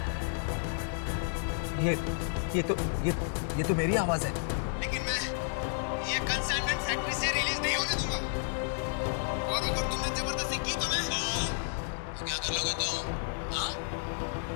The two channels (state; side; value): silent; right; digital silence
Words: ये तो मेरी आवाज है। लेकिन मैं ये कंसाइनमेंट फैक्ट्री से रिलीज नहीं होने दूंगा। और अगर तुमने जबरदस्ती की तो क्या कर लोगे तुम? हाँ?